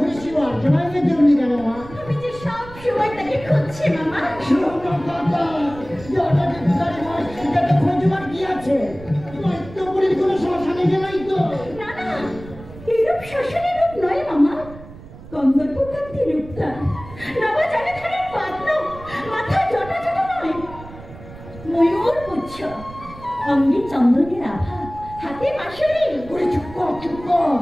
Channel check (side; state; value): right; noise; rumble, 16 dB below the sound